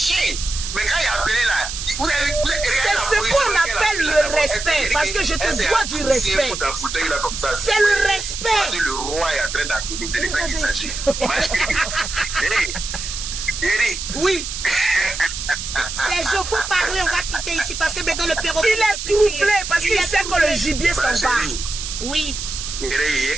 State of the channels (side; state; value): right; noise; hiss, 6 dB below the sound